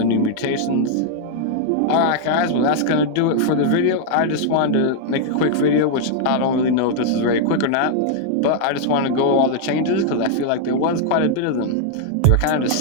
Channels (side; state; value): both; different; correlation -0.01